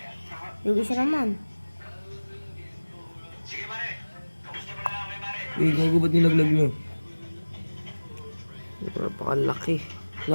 Yung isa naman. Eh, gogo, ba't nilaglag nyo? Napakalaki.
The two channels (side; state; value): both; inverted; correlation -1.00